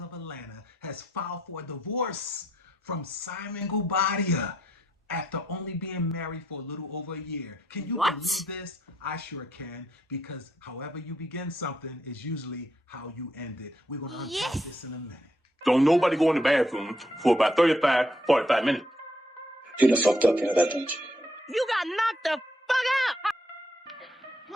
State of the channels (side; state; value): both; normal; correlation 0.75